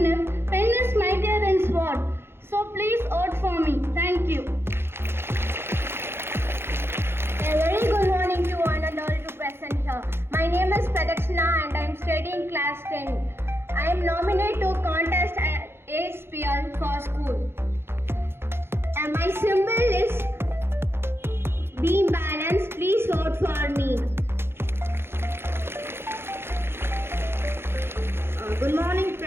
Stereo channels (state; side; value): late; left; 0.11 ms